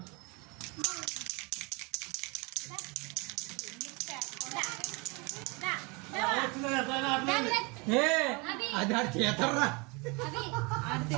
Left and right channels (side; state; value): left; quieter; 28.8 dB